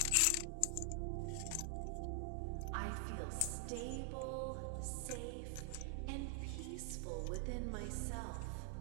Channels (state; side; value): different; both; correlation 0.00